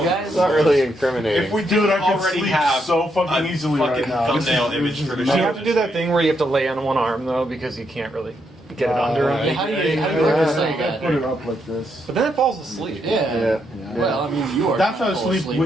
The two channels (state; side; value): normal; both; correlation 0.78